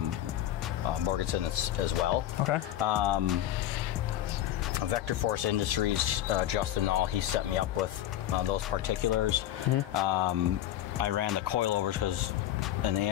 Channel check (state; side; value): quieter; right; 12.5 dB